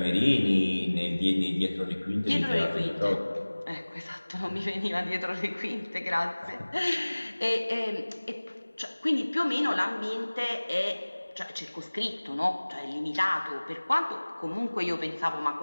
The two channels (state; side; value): inverted; both; correlation -1.00